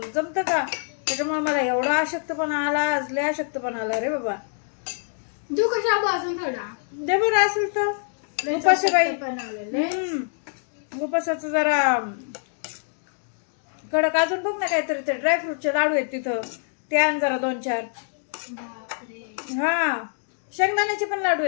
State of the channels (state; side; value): silent; right; 62 dB below the other